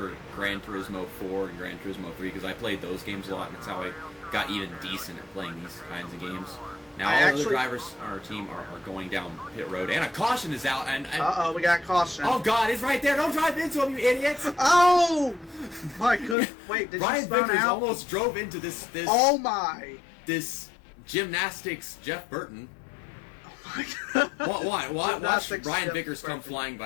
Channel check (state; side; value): drops out; right; at 16.4 s